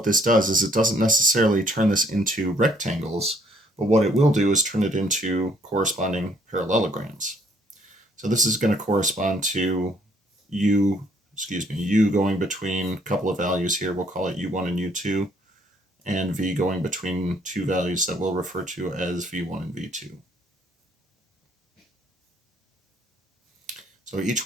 this does is it doesn't necessarily turn this into rectangles, but what it will do is turn it into corresponding parallelograms. So this is going to correspond to u going between a couple of values here. We'll call it u1 and u2, and v going between two values that we'll refer to as v1 and v2. So each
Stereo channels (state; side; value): normal; both; correlation 0.65